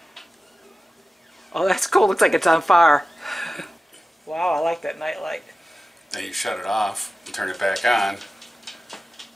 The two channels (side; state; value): both; normal; correlation 0.94